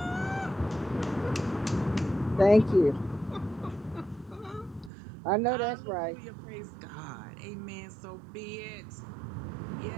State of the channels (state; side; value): drops out; left; at 4.9 s